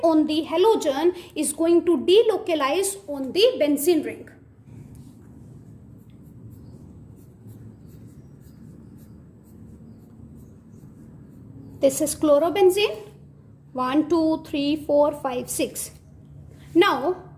on the halogen is going to delocalize on the benzene ring. This is chlorobenzene. 1, 2, 3, 4, 5, 6. Now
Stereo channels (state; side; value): identical; both; correlation 1.00